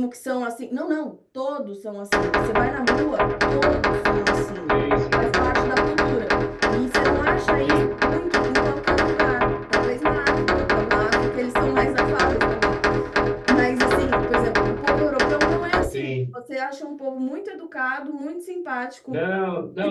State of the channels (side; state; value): both; identical; correlation 1.00